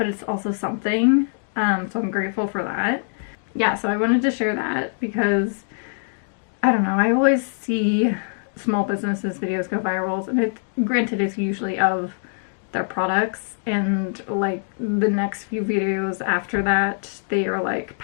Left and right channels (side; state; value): right; silent; digital silence